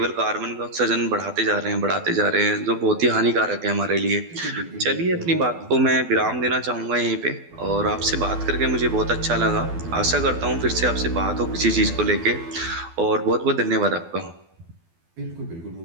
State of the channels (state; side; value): late; left; 12 ms